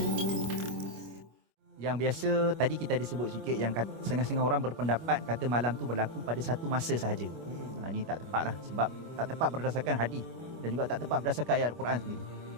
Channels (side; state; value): left; late; 25 ms